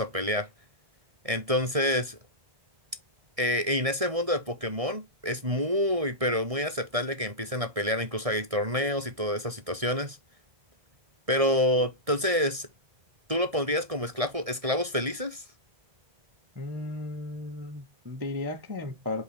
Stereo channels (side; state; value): left; late; 1.6 ms